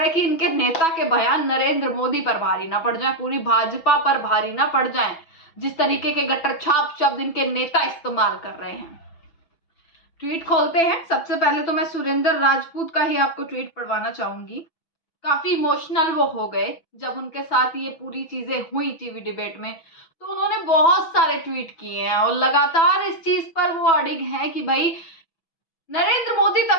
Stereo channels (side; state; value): right; late; 6.1 ms